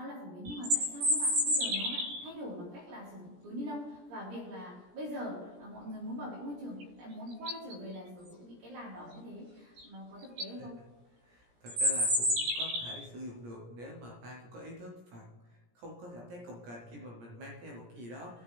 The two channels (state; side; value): late; left; 17 ms